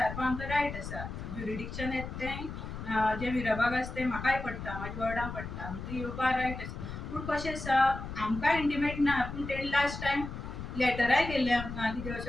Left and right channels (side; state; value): left; noise; rumble, 8 dB below the sound